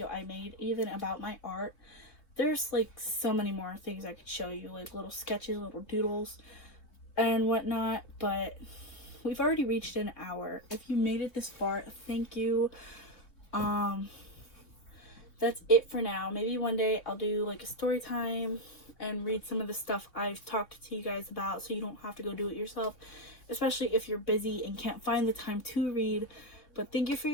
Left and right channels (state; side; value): late; right; 3.0 ms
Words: I made, even about my art. There's like so many more things I could show you, like little sketches, little doodles and whatnot, but we've already reached an hour. If you made it this far, thank you. That's it for now. Maybe one day I'll do like a story time and read some of the stuff I've talked to you guys about, so you don't have to go do it yourself, especially if you're busy and can't find the time to read. But thank you for